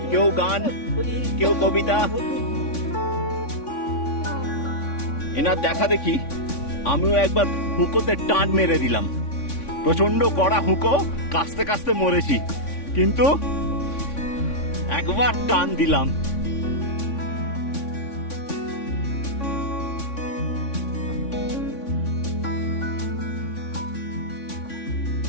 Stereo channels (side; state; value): right; late; 3.5 ms